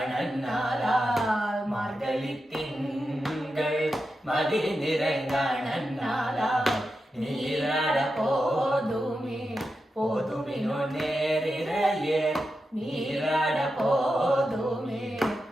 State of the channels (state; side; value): normal; both; correlation 0.89